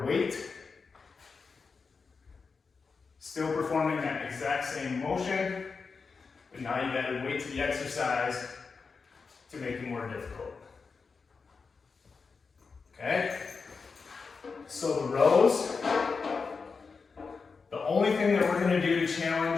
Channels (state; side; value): quieter; right; 4.9 dB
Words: weight. Still performing that exact same motion, but now you've added weight to the exercise to make it more difficult. Okay? So the rows, the only thing that we're gonna do to